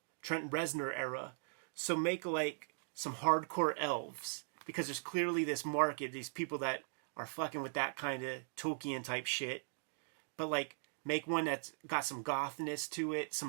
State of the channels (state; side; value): silent; left; digital silence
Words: Trent Reznor era. So make like some hardcore elves, because there's clearly this market, these people that are fucking with that kind of Tolkien type shit. But like make one that's got some gothness to it, some